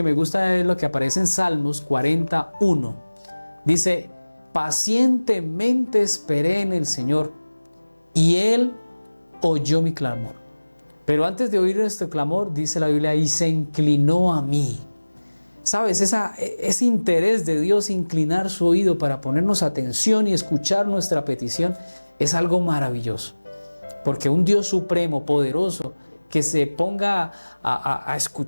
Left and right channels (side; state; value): both; inverted; correlation -1.00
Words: me gusta es lo que aparece en Salmos 41. Dice, pacientemente esperé en el Señor y Él oyó mi clamor. Pero antes de oír este clamor, dice la Biblia, y se inclinó a mí. ¿Sabes? Ese interés de Dios inclinar su oído para ponernos atención y escuchar nuestra petición es algo maravilloso. Porque un Dios supremo, poderoso, que se ponga a